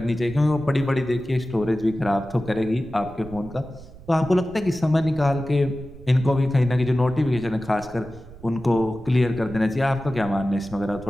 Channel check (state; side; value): noise; right; rumble, 18 dB below the sound